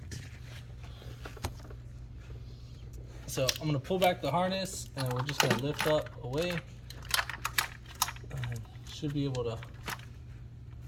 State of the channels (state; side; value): identical; both; correlation 1.00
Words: So I'm gonna pull back the harness and we're just gonna lift up away. Should be able to